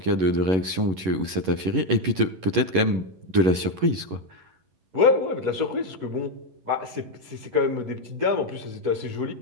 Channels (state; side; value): late; left; 11 ms